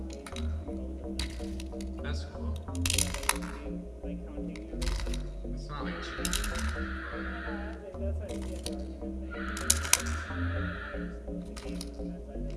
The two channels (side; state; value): both; identical; correlation 1.00